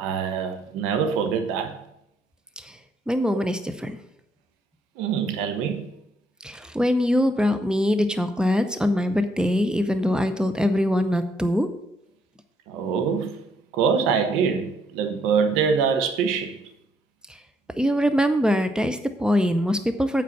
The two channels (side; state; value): both; normal; correlation 0.72